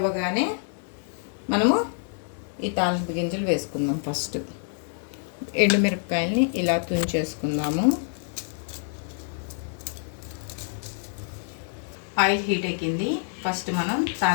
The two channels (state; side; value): silent; right; digital silence